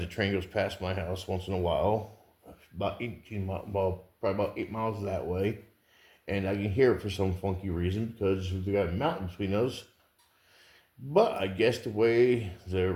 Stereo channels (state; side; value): identical; both; correlation 1.00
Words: train goes past my house once in a while, about 18 miles, well, probably about 8 miles that way, and I can hear it for some funky reason because we got a mountain between us. But I guess the way